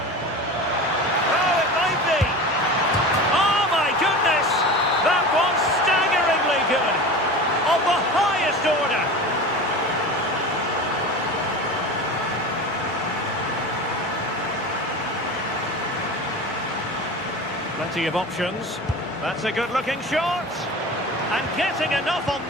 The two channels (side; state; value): both; normal; correlation 0.32